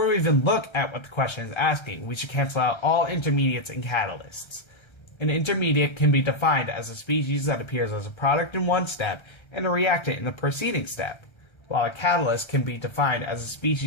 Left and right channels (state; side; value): late; right; 1.3 ms